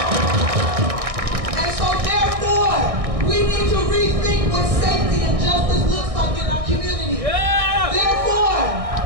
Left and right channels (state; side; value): late; left; 1.6 ms